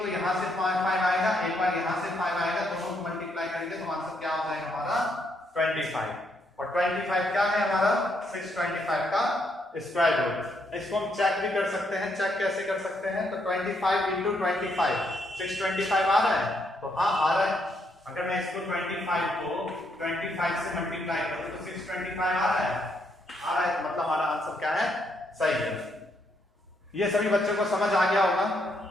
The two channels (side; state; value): both; normal; correlation 0.75